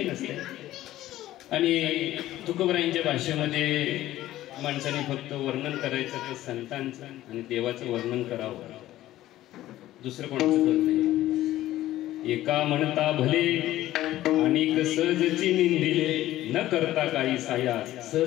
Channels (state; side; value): quieter; right; 14.7 dB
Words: नसते आणि तुकोबरायांच्या भाषेमध्ये माणसाने फक्त वर्णन करायचं तर संतांचं आणि देवाचं वर्णन करावं, दुसरं कोणाचं करत नाही. एका म्हणता भले अनेक सहजची निंदिले, न करता काही साया